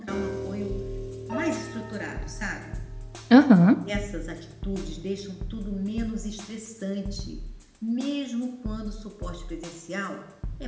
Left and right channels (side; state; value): both; identical; correlation 1.00